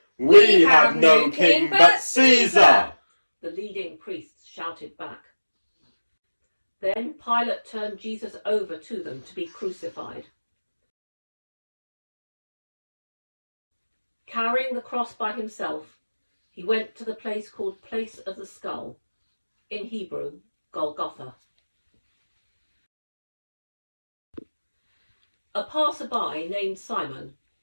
We have no king but Caesar! The leading priests shouted back. Then Pilate turned Jesus over to them to be crucified. Carrying the cross by himself, he went to the place called Place of the Skull, in Hebrew, Golgotha. A passer-by named Simon,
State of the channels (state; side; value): inverted; both; correlation -1.00